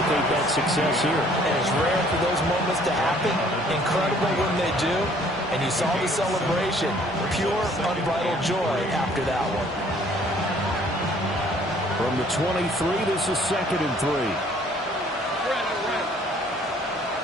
that success here. And it's rare for those moments to happen. Incredible when they do. And you saw the celebration. Pure, unbridled joy after that one. From the 23, this is 2nd and 3.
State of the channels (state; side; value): normal; both; correlation 0.59